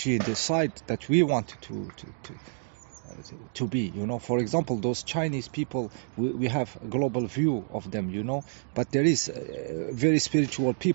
in the side that we want to be, you know. For example, those Chinese people, we have a global view of them, you know, but there is very spiritual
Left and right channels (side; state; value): left; silent; digital silence